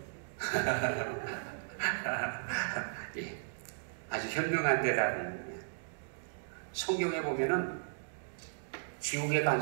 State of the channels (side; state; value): left; silent; digital silence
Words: 예, 아주 현명한 대답입니다. 성경에 보면은 지옥에 간